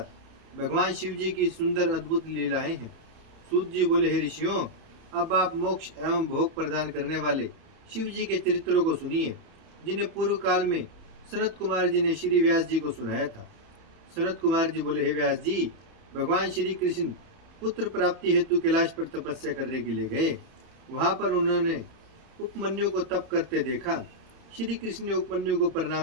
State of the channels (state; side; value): late; left; 30 ms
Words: भगवान शिव जी की सुंदर अद्भुत लीलाएं हैं। सूत जी बोले, हे ऋषियों, अब आप मोक्ष एवं भोग प्रदान करने वाले शिव जी के चरित्रों को सुनिए, जिन्हें पूर्व काल में सनत कुमार जी ने श्री व्यास जी को सुनाया था। सनत कुमार जी बोले, हे व्यास जी, भगवान श्री कृष्ण पुत्र प्राप्ति हेतु कैलाश पर तपस्या करने के लिए गए। वहां पर उन्होंने उपमन्यु को तप करते देखा। श्री कृष्ण ने उपमन्यु को